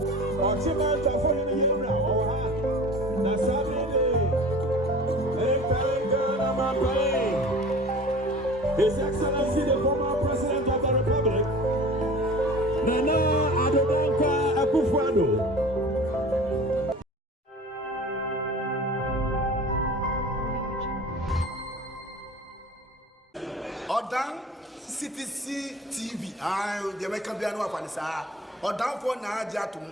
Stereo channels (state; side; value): normal; both; correlation 0.40